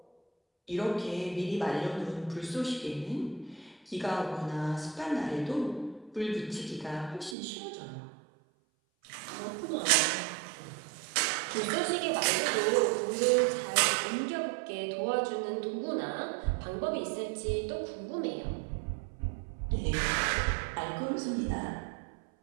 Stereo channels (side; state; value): left; drops out; at 7.4 s